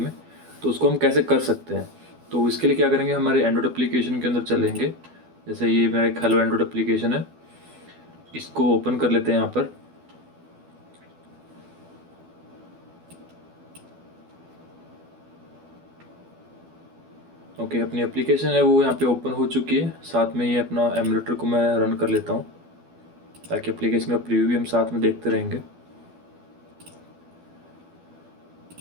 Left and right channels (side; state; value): left; late; 12 ms